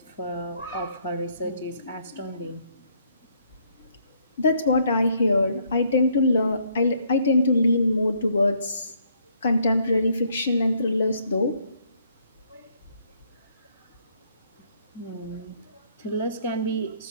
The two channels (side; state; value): both; inverted; correlation -0.68